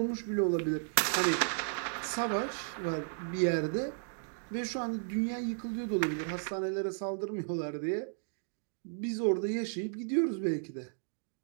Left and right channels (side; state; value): left; silent; digital silence